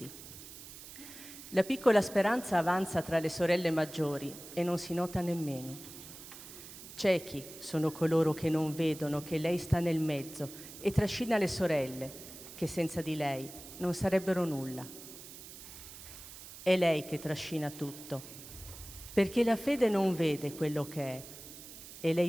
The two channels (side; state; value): right; noise; hiss, 14 dB below the sound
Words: La piccola speranza avanza tra le sorelle maggiori e non si nota nemmeno. Ciechi sono coloro che non vedono che lei sta nel mezzo e trascina le sorelle, che senza di lei non sarebbero nulla. È lei che trascina tutto, perché la fede non vede quello che è, e